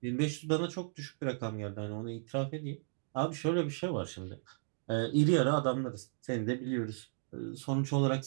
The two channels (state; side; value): silent; left; digital silence